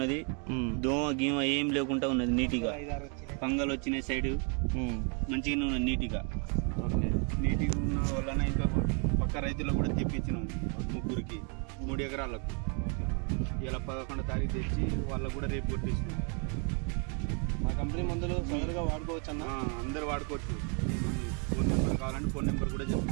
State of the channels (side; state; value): left; quieter; 38.2 dB